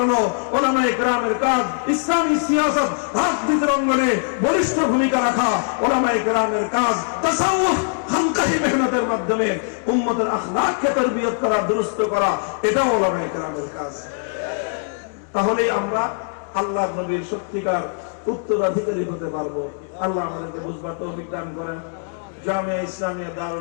ওলামায়ে কেরামের কাজ, ইসলামী সিয়াসত রাজনীতির অঙ্গনে বলিষ্ঠ ভূমিকা রাখা ওলামায়ে কেরামের কাজ, তাসাউফ খানকাহি মেহনতের মাধ্যমে উম্মতের আখলাককে তারবিয়ত করা, দুরুস্ত করা, এটাও ওলামায়ে কেরামের কাজ। তাহলে আমরা আল্লাহর নবীর সত্যিকার উত্তরাধিকারী হতে পারবো। আল্লাহ আমাদেরকে বুঝবার তৌফিক দান করেন। জামিয়া ইসলামিয়া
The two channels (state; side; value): silent; right; digital silence